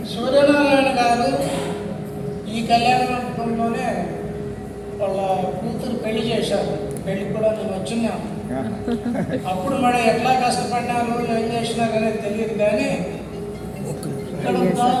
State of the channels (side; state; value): both; identical; correlation 1.00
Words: సూర్యనారాయణ గారు ఈ కళ్యాణ మండపంలోనే వాళ్ళ కూతురు పెళ్లి చేశారు. పెళ్లి కూడా నేను వచ్చినాను. అప్పుడు మరి ఎట్లా కష్టపడినారు, ఏం చేసినారు అనేది తెలియదు. కానీ